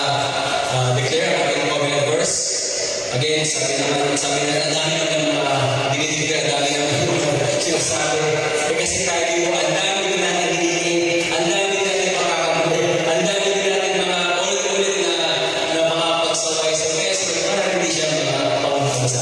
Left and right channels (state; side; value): identical; both; correlation 1.00